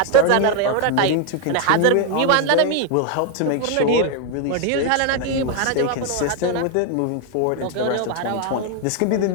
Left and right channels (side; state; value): both; different; correlation 0.01